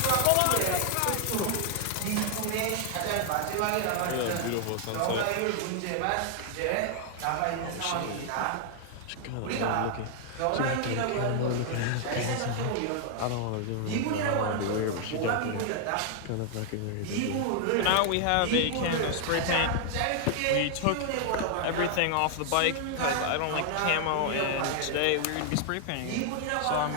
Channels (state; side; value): different; both; correlation 0.00